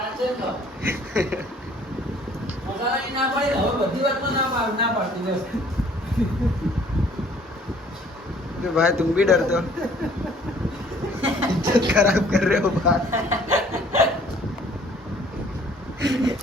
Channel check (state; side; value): normal; both; correlation 0.57